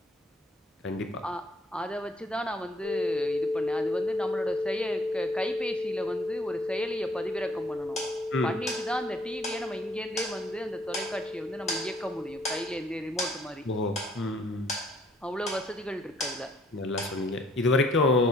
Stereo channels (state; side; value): normal; both; correlation 0.63